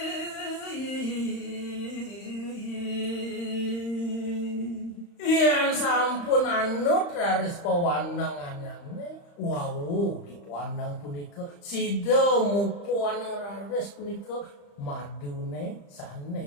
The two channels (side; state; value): right; late; 35 ms